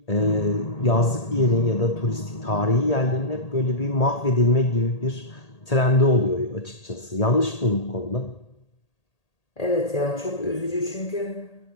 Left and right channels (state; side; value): late; right; 1.8 ms